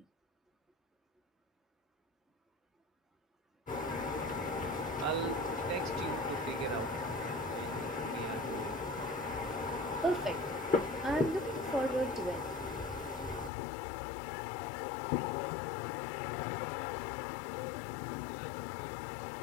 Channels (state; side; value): drops out; right; at 13.5 s